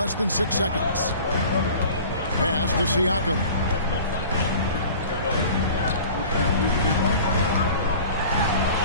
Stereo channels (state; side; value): inverted; both; correlation -0.43